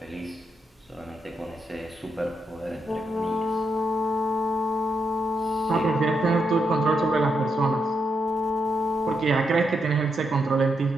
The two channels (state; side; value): normal; both; correlation 0.81